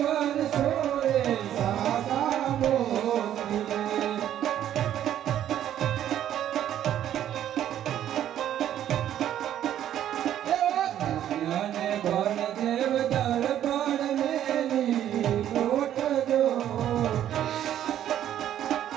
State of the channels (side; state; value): left; quieter; 11.1 dB